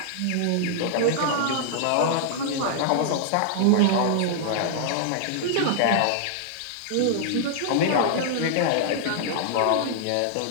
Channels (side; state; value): both; different; correlation -0.01